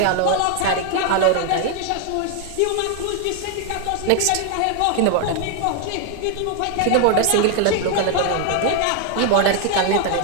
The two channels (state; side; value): different; both; correlation 0.01